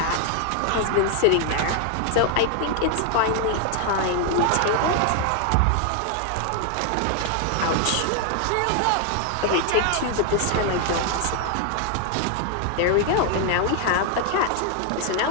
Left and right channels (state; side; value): different; both; correlation 0.00